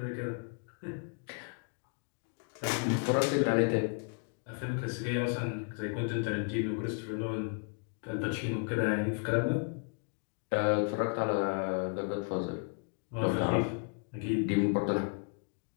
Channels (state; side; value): quieter; right; 38.8 dB